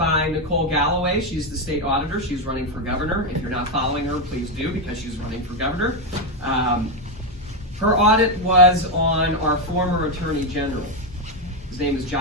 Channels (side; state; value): both; normal; correlation 0.06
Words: Nicole Galloway. She's the state auditor. She's running for governor. If you're not following her, please do, because she's running for governor. Her audit was on our former Attorney General. His name is